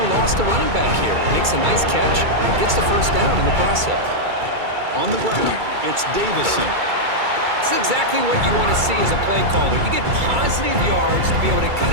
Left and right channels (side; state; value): left; late; 2.3 ms